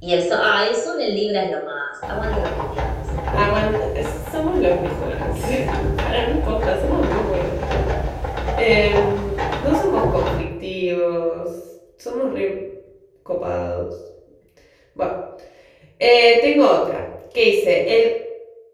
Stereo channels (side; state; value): both; identical; correlation 1.00